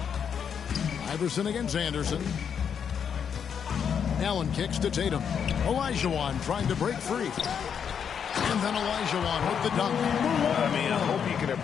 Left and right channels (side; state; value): right; quieter; 7.5 dB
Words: Iverson against Anderson. Allen kicks to Tatum. Olajuwon trying to break free. And then Olajuwon with the dunk. I mean, I hope you can